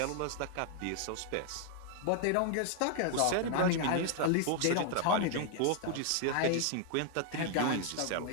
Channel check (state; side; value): different; both; correlation 0.00